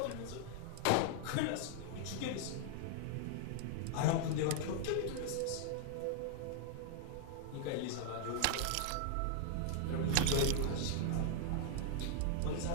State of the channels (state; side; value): different; both; correlation 0.00